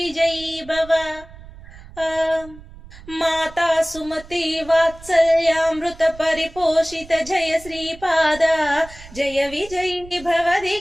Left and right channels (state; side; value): noise; right; rumble, 18 dB below the sound